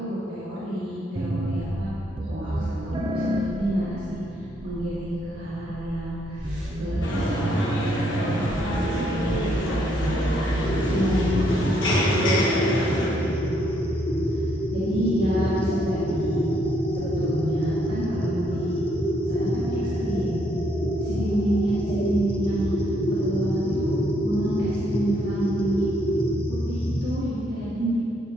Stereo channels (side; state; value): both; normal; correlation 0.72